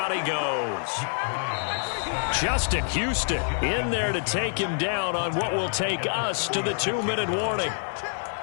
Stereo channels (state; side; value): silent; right; digital silence